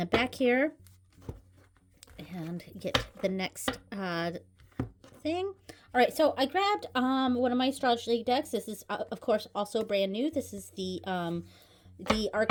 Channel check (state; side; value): identical; both; correlation 1.00